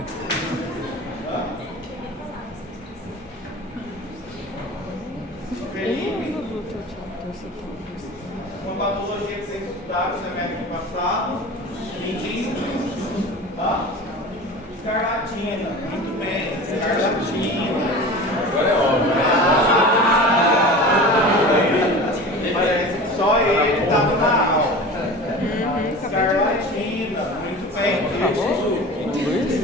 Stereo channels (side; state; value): both; normal; correlation 0.35